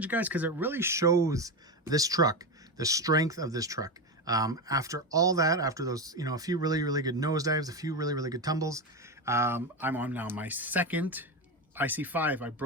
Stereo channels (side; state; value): both; normal; correlation 0.16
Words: guys, because it really shows this truck, the strength of this truck. After all that, after those, you know, a few really, really good nosedives, a few really, really good tumbles, I'm on now my second IC5. I